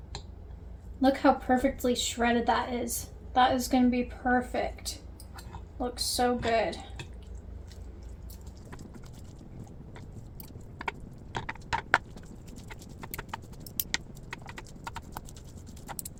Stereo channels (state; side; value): identical; both; correlation 1.00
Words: Look how perfectly shredded that is. That is going to be perfect. Looks so good.